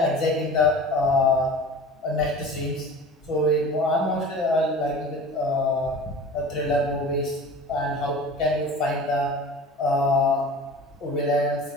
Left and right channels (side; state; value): both; normal; correlation 0.39